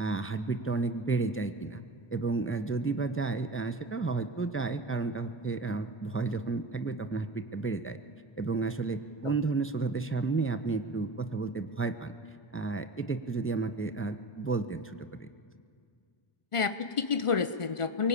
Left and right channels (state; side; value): late; right; 1.4 ms